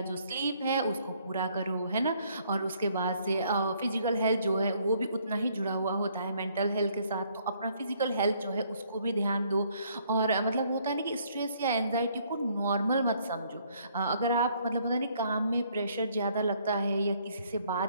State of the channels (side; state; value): both; inverted; correlation -0.66